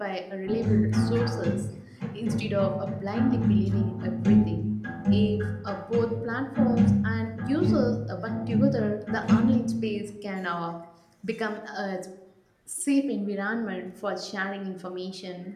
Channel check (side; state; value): both; identical; correlation 1.00